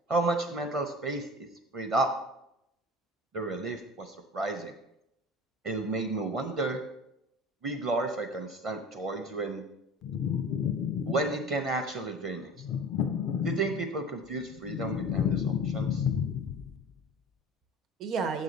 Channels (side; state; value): both; normal; correlation 0.38